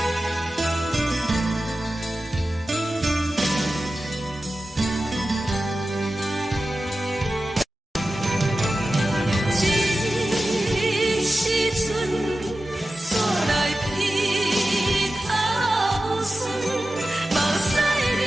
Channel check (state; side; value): normal; both; correlation 0.94